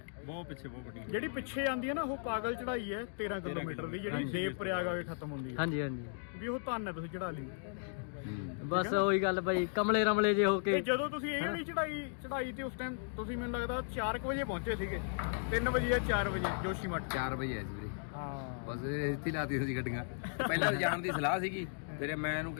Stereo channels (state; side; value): silent; right; digital silence